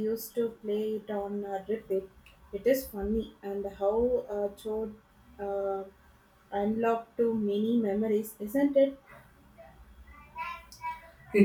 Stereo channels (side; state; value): both; identical; correlation 1.00